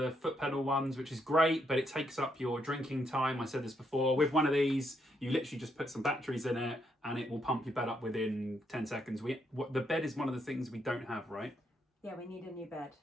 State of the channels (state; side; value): normal; both; correlation 0.76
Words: foot pedal ones, which is great, but it takes up your drinking time. I said this before. With one of these, you literally just put some batteries in it, and it will pump your bed up within 10 seconds. The bed is one of the things we don't have, right? Yeah, we need a new bed.